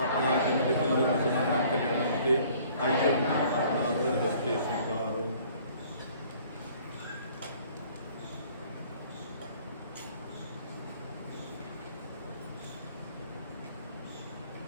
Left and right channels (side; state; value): both; inverted; correlation -0.55